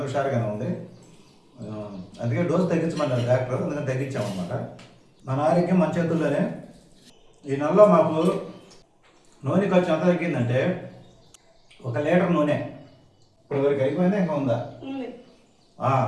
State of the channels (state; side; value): identical; both; correlation 1.00